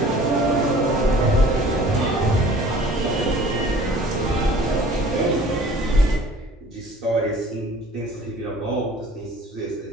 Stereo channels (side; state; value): both; normal; correlation 0.49